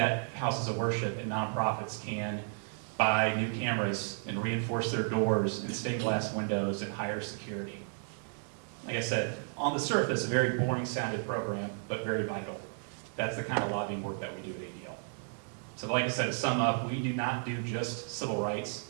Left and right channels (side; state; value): left; silent; 56 dB below the other